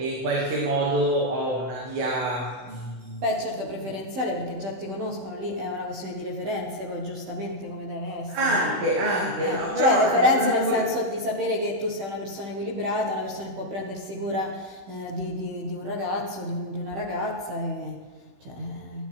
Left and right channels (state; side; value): late; left; 15 ms